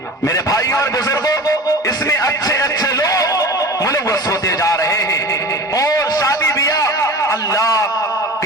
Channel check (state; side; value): normal; both; correlation 0.35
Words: मेरे भाइयों और बुजुर्गों, इसमें अच्छे अच्छे लोग मुलव्वस होते जा रहे हैं और शादी ब्याह अल्लाह